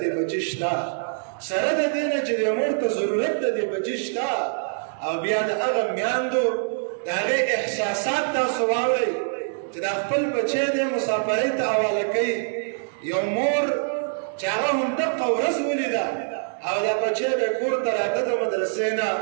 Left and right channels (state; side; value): silent; left; 62 dB below the other